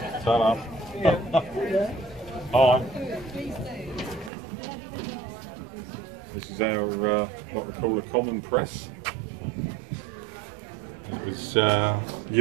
Salam. Hi. This is our what we call a common press. It was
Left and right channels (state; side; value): drops out; left; at 4.3 s